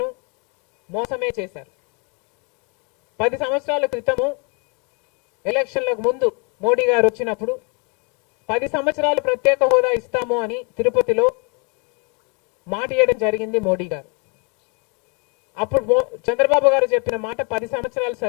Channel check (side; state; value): right; quieter; 34.7 dB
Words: మోసమే చేశారు. 10 సంవత్సరాల క్రితము ఎలక్షన్లకు ముందు మోడీ గారు వచ్చినప్పుడు 10 సంవత్సరాలు ప్రత్యేక హోదా ఇస్తాము అని తిరుపతిలో మాట ఇవ్వడం జరిగింది మోడీ గారు. అప్పుడు చంద్రబాబు గారు చెప్పిన మాట 10 సంవత్సరాలు